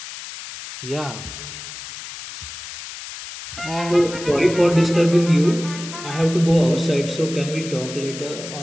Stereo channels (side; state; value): left; noise; hiss, 11 dB below the sound